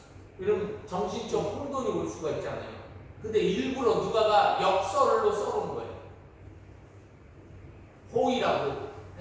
이런 정신적 혼돈이 올 수가 있잖아요. 근데 일부러 누가가 역설로 써놓은 거예요. 호의라고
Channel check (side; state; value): both; identical; correlation 1.00